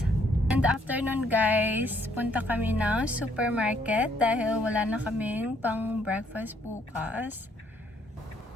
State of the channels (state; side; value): normal; both; correlation 0.68